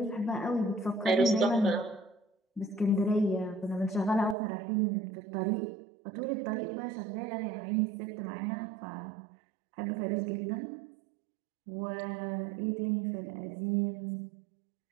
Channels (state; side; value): drops out; left; at 4.4 s